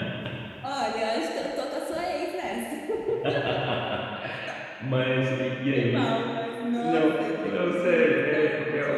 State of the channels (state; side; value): identical; both; correlation 1.00